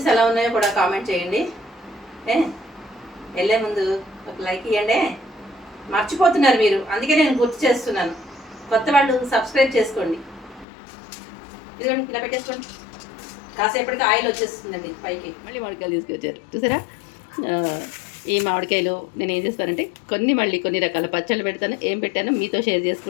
ఎలా ఉన్నాయో కూడా కామెంట్ చేయండి. ఏ వెళ్ళే ముందు ఒక లైక్ ఇవ్వండి. మర్చిపోతున్నారు మీరు, అందుకే నేను గుర్తు చేస్తున్నాను. కొత్త వాళ్ళు సబ్స్క్రైబ్ చేసుకోండి. ఇదిగోండి ఇలా పెట్టేసుకోండి. కాసేపటికి ఆయిల్ వచ్చేస్తుందండి పైకి. మళ్ళీ మామిడికాయలు తీసుకొచ్చారు చూసారా. ఈ మామిడికాయలు నేను ఏం చేస్తానంటే కొన్ని రకాల పచ్చళ్ళు పెడతాను. ఏం పెట్టానో మీతో షేర్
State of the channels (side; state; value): right; drops out; at 10.7 s